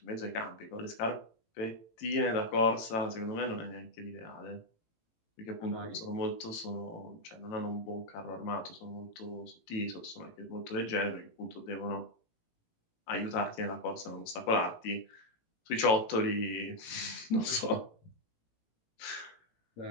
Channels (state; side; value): late; right; 18 ms